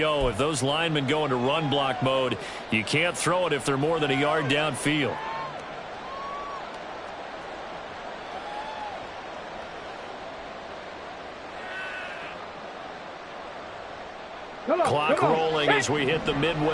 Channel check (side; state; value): both; identical; correlation 1.00